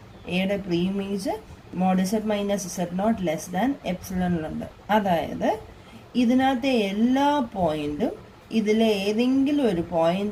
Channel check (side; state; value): both; identical; correlation 1.00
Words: എയുടെ pre image mod Z minus Z not less than എപ്സിലോണിലുണ്ട്. അതായത് ഇതിനകത്തെ എല്ലാ പോയിന്റും ഇതിലെ ഏതെങ്കിലും ഒരു